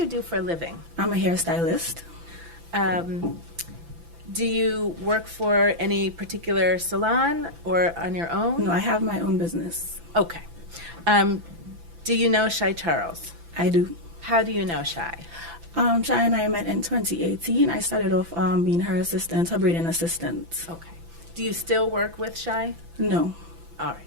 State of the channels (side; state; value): left; late; 6.0 ms